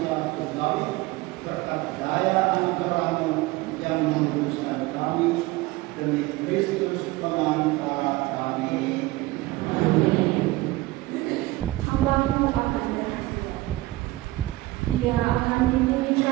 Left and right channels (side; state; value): left; quieter; 19.2 dB